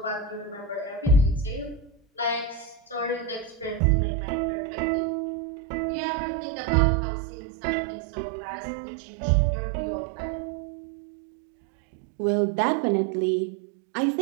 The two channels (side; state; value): left; drops out; at 3.8 s